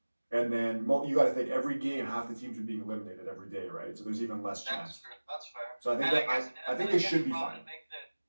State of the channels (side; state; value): both; inverted; correlation -1.00